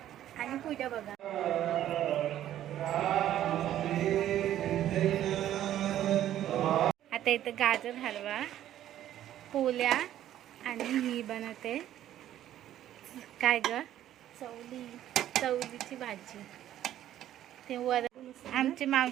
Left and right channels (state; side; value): quieter; left; 12.1 dB